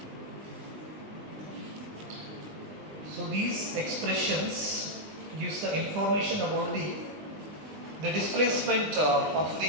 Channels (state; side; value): late; left; 20 ms